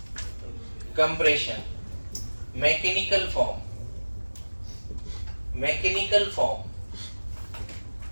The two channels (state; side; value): inverted; both; correlation -1.00